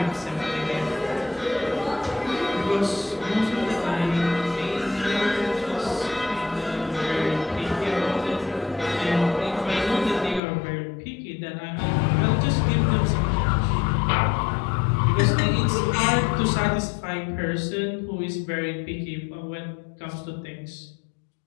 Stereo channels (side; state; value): right; drops out; at 10.4 s